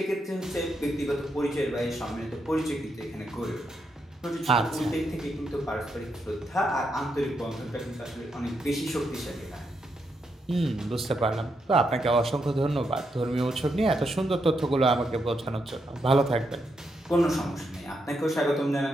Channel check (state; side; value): normal; both; correlation 0.81